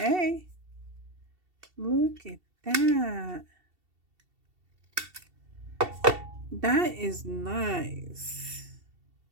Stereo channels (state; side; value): late; left; 2.7 ms